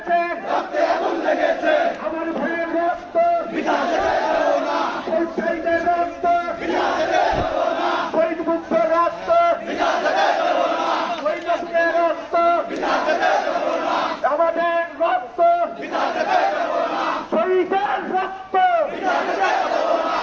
আমার ভাইয়ের রক্ত শহীদের রক্ত শহীদ মুক্তের রক্ত শহীদের রক্ত আমাদের রক্ত শহীদের রক্ত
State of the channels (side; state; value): both; identical; correlation 1.00